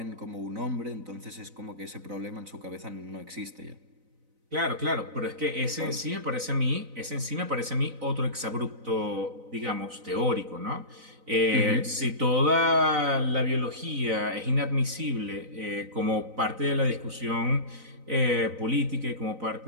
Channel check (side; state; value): left; late; 4.0 ms